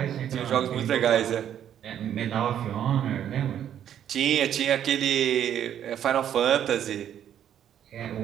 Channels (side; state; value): left; quieter; 10.0 dB